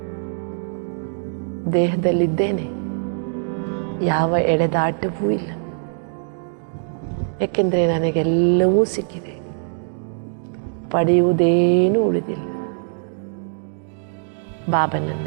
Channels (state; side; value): silent; left; digital silence